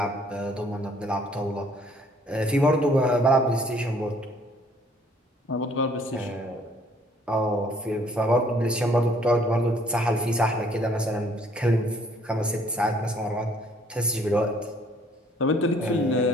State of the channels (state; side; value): normal; both; correlation 0.61